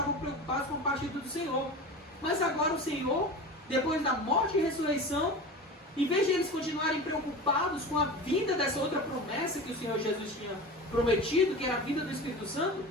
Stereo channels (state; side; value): normal; both; correlation 0.31